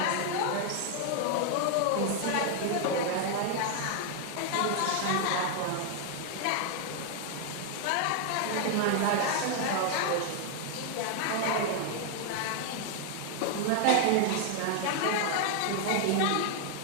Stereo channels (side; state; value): both; different; correlation 0.00